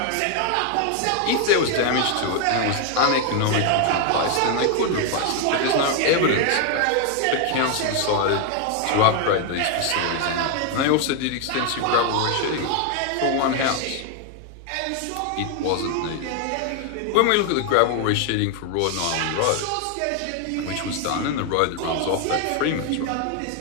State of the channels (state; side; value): different; both; correlation 0.01